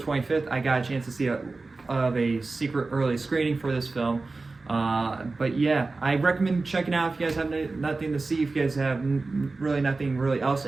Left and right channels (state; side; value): quieter; left; 3.6 dB